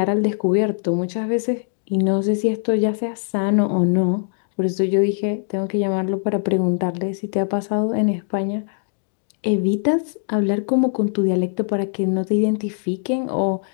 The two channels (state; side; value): silent; right; digital silence